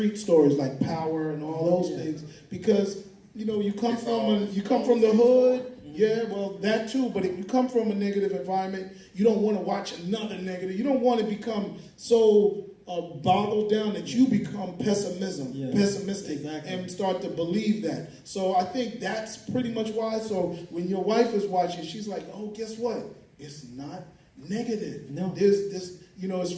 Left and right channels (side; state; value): both; identical; correlation 1.00